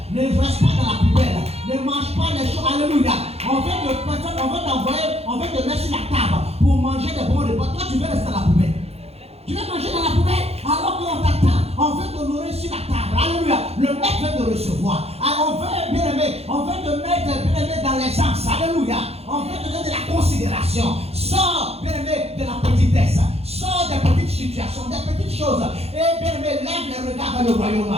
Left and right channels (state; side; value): late; left; 0.29 ms